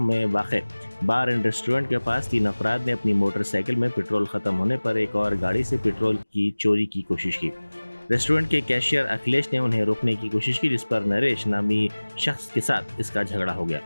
میں واقع بار اینڈ ریسٹورنٹ کے پاس 3 افراد نے اپنی موٹر سائیکل میں پیٹرول ختم ہونے پر ایک اور گاڑی سے پیٹرول کی چوری کی کوشش کی۔ ریسٹورنٹ کے کیشیئر اکھلیش نے انہیں روکنے کی کوشش کی، جس پر نریش نامی شخص کے ساتھ اس کا جھگڑا ہو گیا۔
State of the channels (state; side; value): inverted; both; correlation -1.00